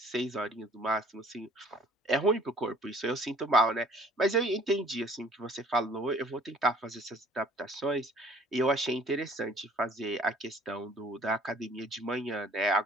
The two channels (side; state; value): both; normal; correlation 0.55